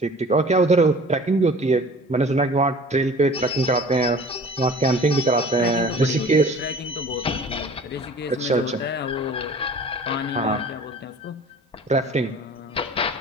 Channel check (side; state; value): both; normal; correlation 0.45